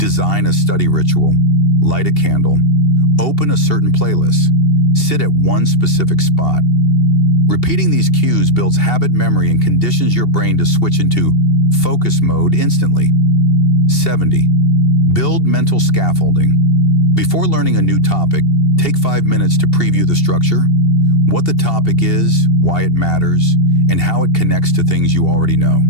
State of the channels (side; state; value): right; late; 2.7 ms